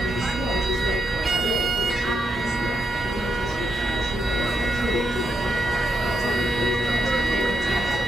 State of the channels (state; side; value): normal; both; correlation 0.82